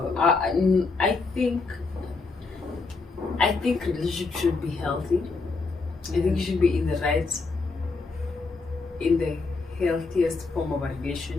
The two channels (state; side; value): quieter; right; 4.0 dB